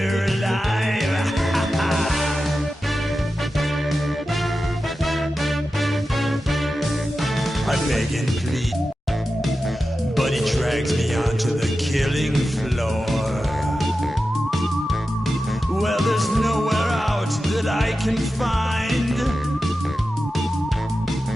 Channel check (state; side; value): normal; both; correlation 0.93